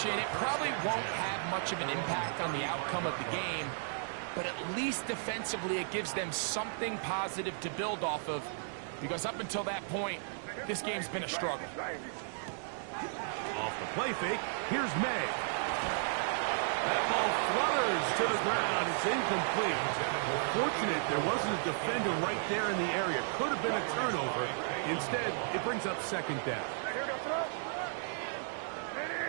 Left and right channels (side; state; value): left; silent; digital silence